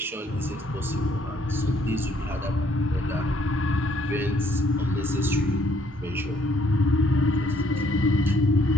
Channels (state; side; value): normal; both; correlation 0.66